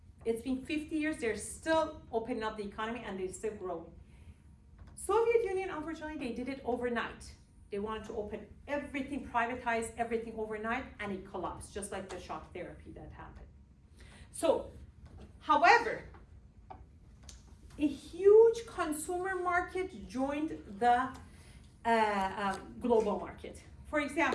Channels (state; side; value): identical; both; correlation 1.00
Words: It's been 50 years, they're still opening up the economy and they're still growing. Soviet Union, unfortunately, they did it overnight. They wanted to open everything, privatize everything overnight, and it collapsed, just like the shock therapy that happened. So, however, a huge consumer market joined the global market. For